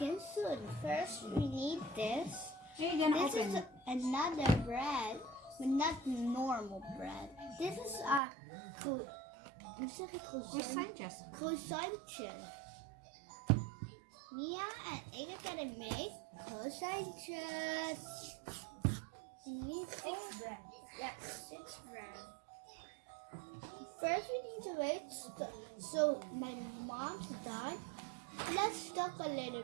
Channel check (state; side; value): drops out; left; at 8.2 s